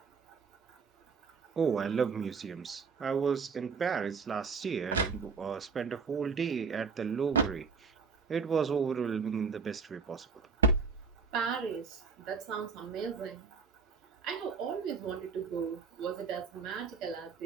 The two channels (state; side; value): quieter; left; 5.2 dB